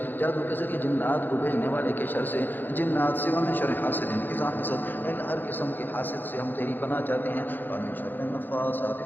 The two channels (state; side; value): late; right; 0.091 ms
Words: جادو کے ذریعے جنات کو بھیجنے والے کے شر سے جنات سے ومن شر حاسد اذا حسد اے اللہ ہر قسم کے حاسد سے ہم تیری پناہ چاہتے ہیں ومن شر النفاثات